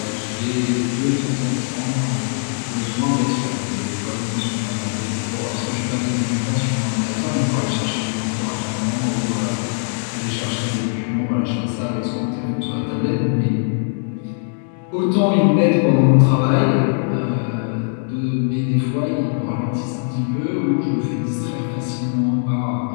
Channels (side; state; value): right; silent; digital silence